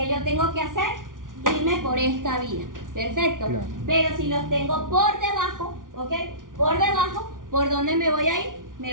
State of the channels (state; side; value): late; left; 0.89 ms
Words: yo tengo que hacer, irme por esta vía. Perfecto. Claro. Pero si los tengo por debajo, ¿ok? Por debajo, ¿por dónde me voy a ir?